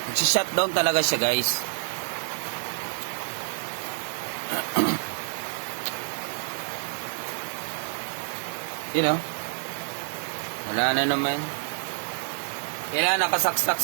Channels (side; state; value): left; silent; digital silence